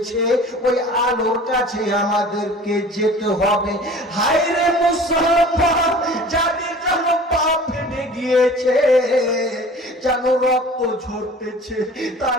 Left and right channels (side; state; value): both; normal; correlation 0.44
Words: ওই আলোর কাছে আমাদেরকে যেতে হবে। হায় রে মুসলমান, যাদের যেন পা ফেটে গিয়েছে, যেন রক্ত ঝরতেছে,